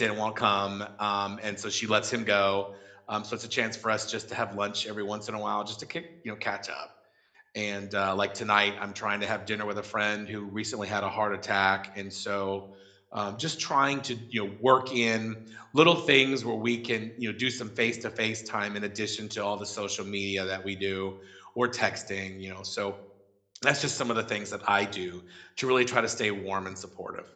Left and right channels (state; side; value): identical; both; correlation 1.00